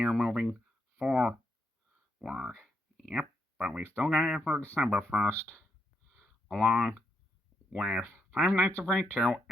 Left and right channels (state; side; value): normal; both; correlation 0.80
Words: moving forward. Yep, but we still got it for December 1st. Along with Five Nights at Freddy's 2